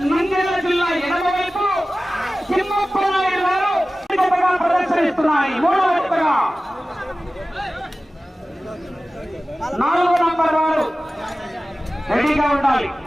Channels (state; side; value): normal; both; correlation 0.96